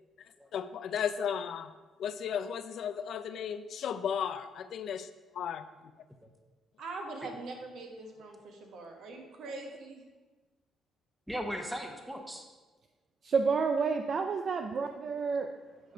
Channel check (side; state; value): both; normal; correlation 0.72